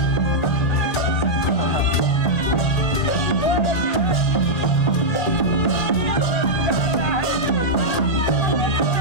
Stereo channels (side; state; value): right; late; 2.4 ms